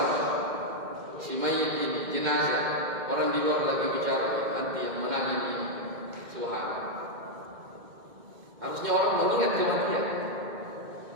Si mayit ini jenazah, orang di luar lagi bicara, ya, nanti yang menang ini. Subhanallah. Harusnya orang mengingat kematian.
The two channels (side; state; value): left; late; 2.1 ms